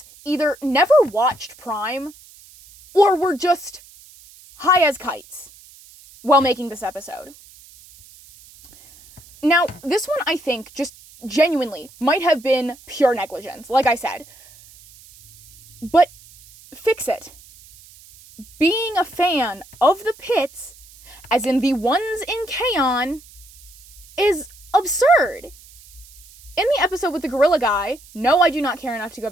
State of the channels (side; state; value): right; noise; hiss, 23 dB below the sound